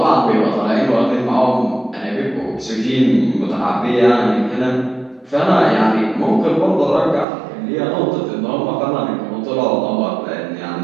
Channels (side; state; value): left; drops out; at 7.2 s